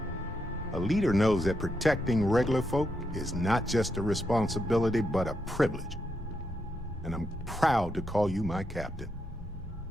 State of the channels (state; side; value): normal; both; correlation 0.82